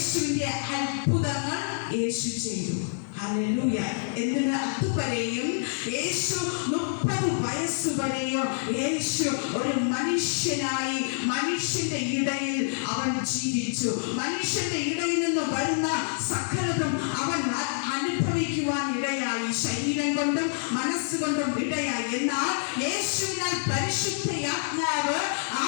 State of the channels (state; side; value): silent; right; digital silence